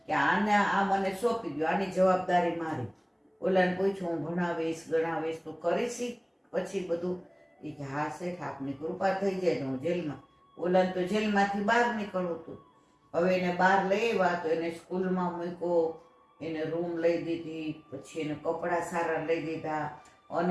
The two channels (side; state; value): both; identical; correlation 1.00